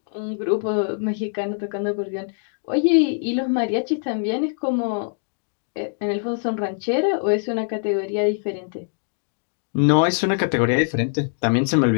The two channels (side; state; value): right; silent; digital silence